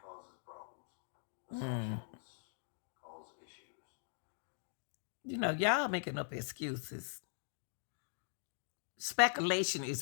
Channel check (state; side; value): silent; right; digital silence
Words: causes problems. Assumptions cause issues. You know, y'all making up excuses. Speculation